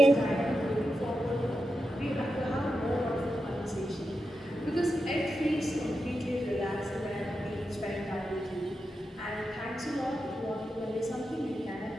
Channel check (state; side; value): normal; both; correlation 0.88